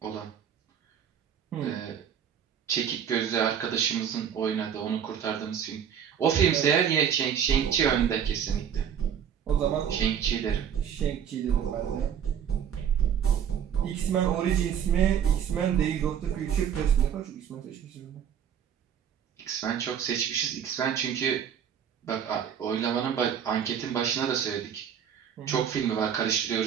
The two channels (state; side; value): quieter; left; 8.5 dB